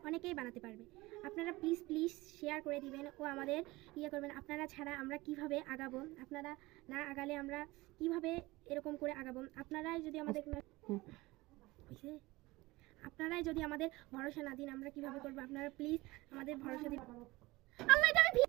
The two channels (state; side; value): quieter; left; 20.7 dB